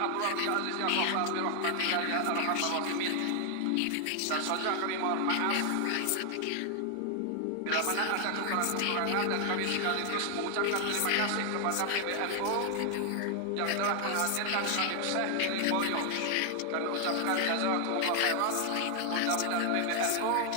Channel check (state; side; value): different; both; correlation 0.00